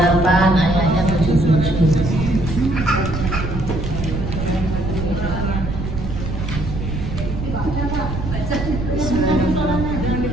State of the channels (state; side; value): noise; right; rumble, 5 dB below the sound